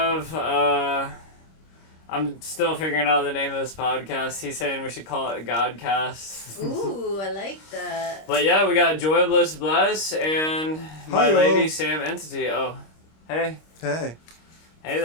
I'm still figuring out the name of this podcast. He's saying we should call it Godcast. Ooh, I like that. But yeah, we got Joy, Bliss, Bless, and my Hi-yo. lady, Sam Entity. Oh, hey. Hey. Hey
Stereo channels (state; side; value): late; right; 26 ms